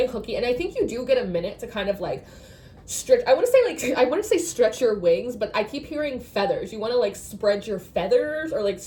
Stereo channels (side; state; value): both; identical; correlation 1.00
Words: hooky, and I think you do get a minute to kind of like stretch, I want to say stretch your wings, but I keep hearing feathers. You want to like spread your feathers or like